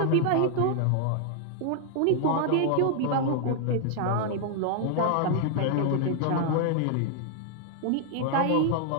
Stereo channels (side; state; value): both; different; correlation 0.00